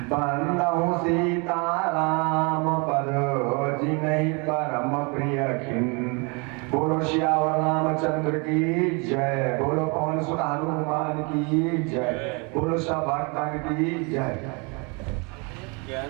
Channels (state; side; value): quieter; left; 31.6 dB